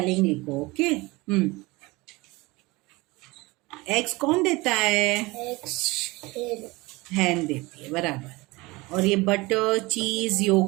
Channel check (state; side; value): quieter; left; 22.8 dB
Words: लिखो. ओके. एग्स कौन देता है? Eggs. Hen. हैन देती है, बराबर। और ये बटर, चीज,